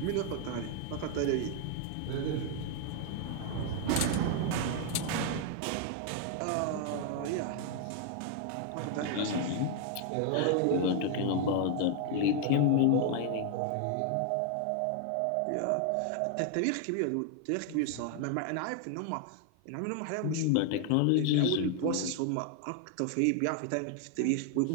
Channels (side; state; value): both; different; correlation 0.00